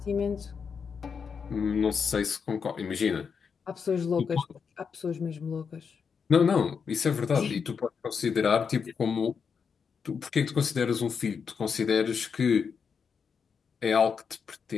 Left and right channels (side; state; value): right; quieter; 6.2 dB